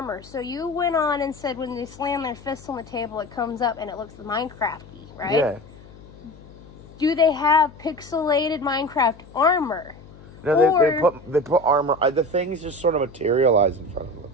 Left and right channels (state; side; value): noise; left; hum, 21 dB below the sound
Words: So you went on and said when they slam their fists on the table, it comes up and it looks Minecraft-y, right? Yeah. Do they have pixelated Minecraft armor? No, they put armor. The things just sort of materialize in front of them.